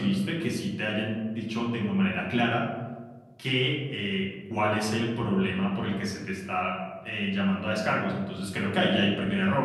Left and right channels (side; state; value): both; identical; correlation 1.00